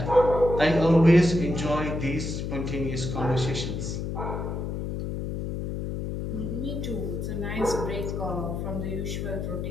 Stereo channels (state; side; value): noise; left; hum, 4 dB below the sound